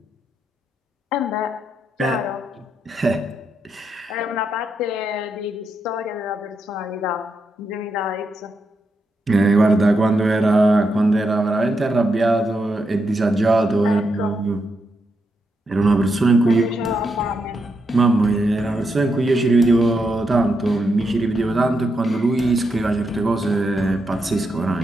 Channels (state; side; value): normal; both; correlation 0.83